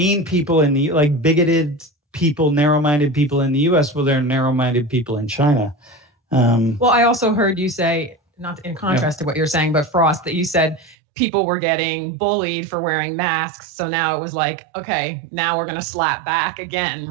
people in the, like bigoted people, narrow-minded people in the US. Well, there are narrow-minded people in China. Well, I also heard you say, not in contrast to what you're saying, but Frost, that you said people were getting bullied for wearing masks. So now it was like, okay, now we're going to slap back again,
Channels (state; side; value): drops out; left; at 11.0 s